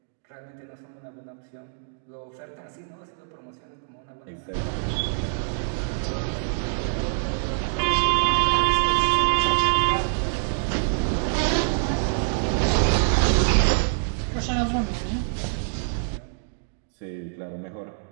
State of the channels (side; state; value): left; silent; digital silence